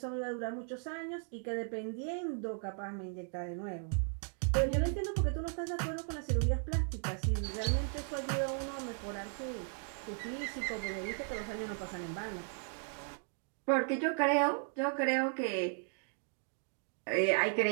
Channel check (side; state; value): left; silent; 54 dB below the other